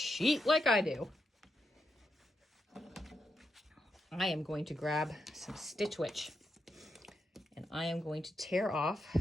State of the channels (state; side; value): normal; both; correlation 0.84